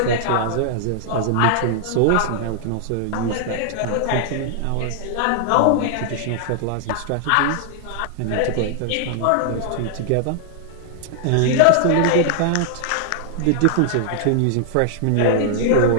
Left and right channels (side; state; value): both; different; correlation 0.00